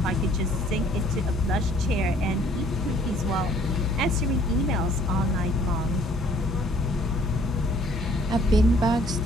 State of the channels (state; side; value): normal; both; correlation 0.59